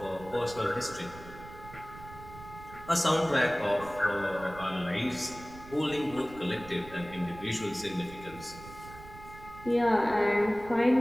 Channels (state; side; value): noise; right; rumble, 16 dB below the sound